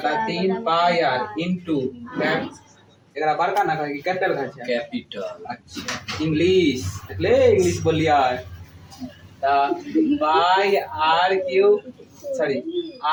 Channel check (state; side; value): identical; both; correlation 1.00